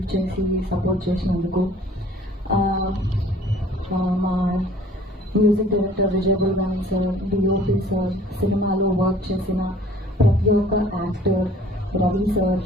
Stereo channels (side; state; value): both; normal; correlation 0.52